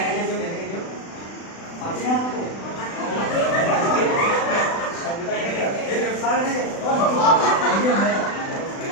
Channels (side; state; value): right; late; 36 ms